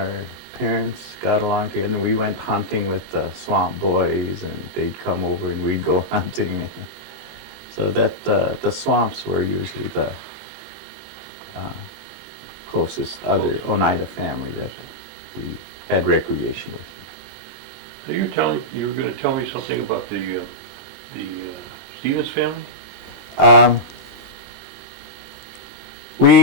parents got along together, and we went hunting with the Swamp boys, and they'd come over and we'd go hunting. So that the Swamps were usually the closest other Oneida family that we had recreation with. So you were going to tell me something about the Stevens family?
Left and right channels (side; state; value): left; late; 28 ms